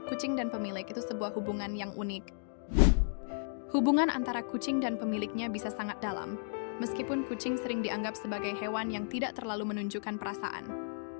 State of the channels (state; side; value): silent; right; digital silence